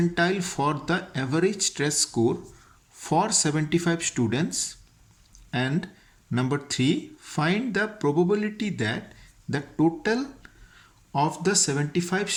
for the average stress score for 75 students. And number 3, find the probability that the total of the 75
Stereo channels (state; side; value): identical; both; correlation 1.00